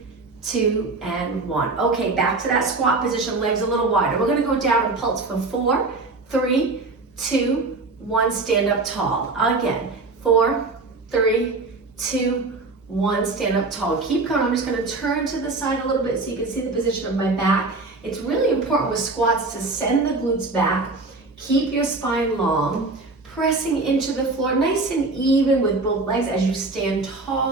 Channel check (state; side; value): quieter; left; 3.5 dB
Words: 2, and 1. Okay, back to that squat position, legs a little wider. We're gonna go down and pulse for 4, 3, 2, 1, stand up tall. Again, 4, 3, 2, 1, stand up tall. Keep going. I'm just gonna turn to the side a little bit so you can see the position of my back. It's really important with squats to send the glutes back, keep your spine long, pressing into the floor nice and even with both legs as you stand